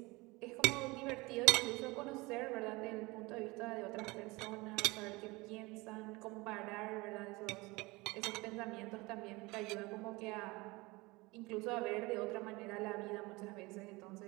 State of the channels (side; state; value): left; quieter; 23.4 dB